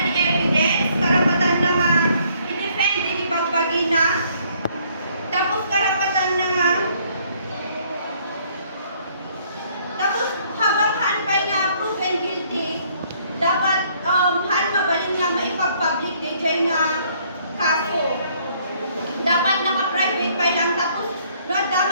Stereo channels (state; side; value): inverted; both; correlation -0.64